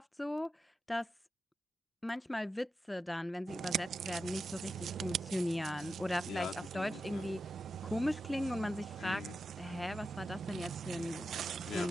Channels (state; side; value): normal; both; correlation 0.90